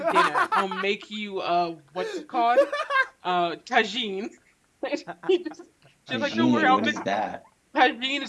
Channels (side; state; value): both; identical; correlation 1.00